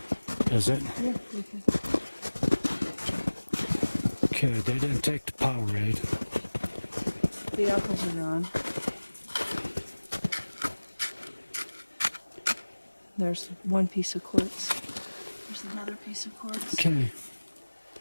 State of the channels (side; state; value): both; inverted; correlation -1.00